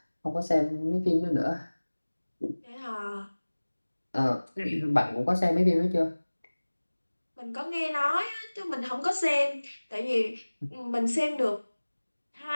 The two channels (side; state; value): both; inverted; correlation -1.00